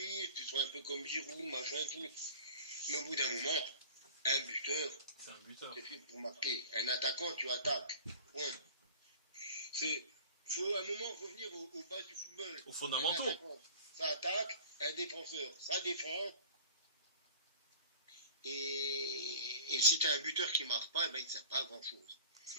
tu sois un peu comme Giroud, machin, tout. Mais au bout d'un moment, un buteur, c'est un buteur. C'est fait pour marquer. Un attaquant, tu attaques. Point. Faut à un moment revenir aux bases du football. Aux fondamentaux. Ça attaque, un défenseur, ça défend. Et si tu as un buteur qui ne marque pas, ben, il ne sert pas à grand chose.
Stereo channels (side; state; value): both; inverted; correlation -0.43